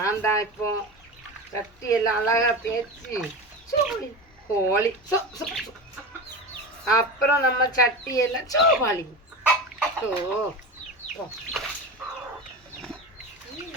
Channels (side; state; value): both; normal; correlation 0.26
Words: தான் இப்போ சட்டியெல்லாம் அழகாக தேய்ச்சி கோழி அப்புறம் நம்ம சட்டியெல்லாம் சோபாளி